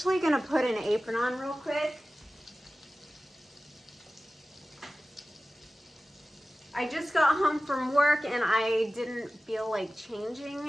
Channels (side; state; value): both; normal; correlation 0.95